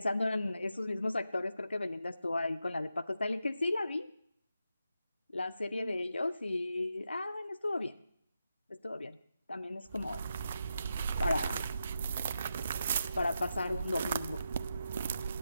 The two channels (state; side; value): inverted; both; correlation -0.86